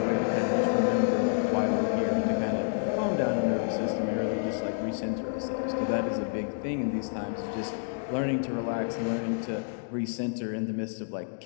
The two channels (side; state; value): right; silent; digital silence